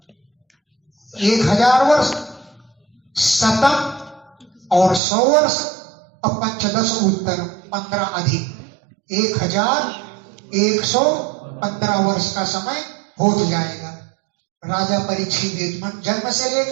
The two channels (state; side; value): drops out; left; at 5.0 s